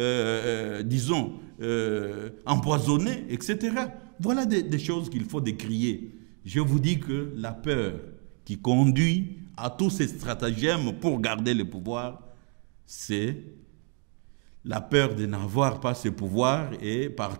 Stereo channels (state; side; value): quieter; left; 36.8 dB